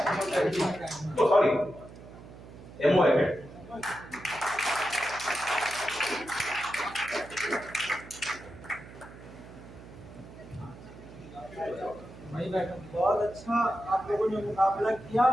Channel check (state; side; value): noise; right; hum, 17 dB below the sound